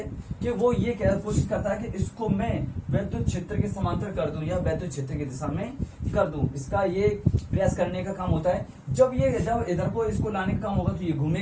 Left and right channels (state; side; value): identical; both; correlation 1.00